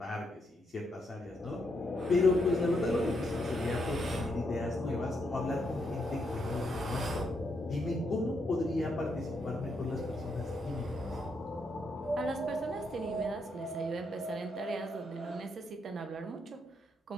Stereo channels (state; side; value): normal; both; correlation 0.78